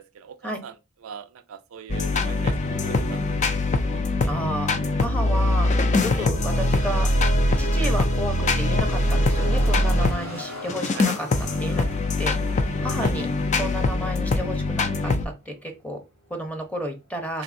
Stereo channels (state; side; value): normal; both; correlation 0.70